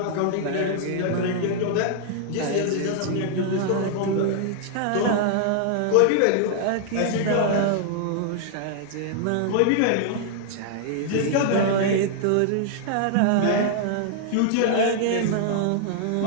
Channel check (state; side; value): different; both; correlation -0.01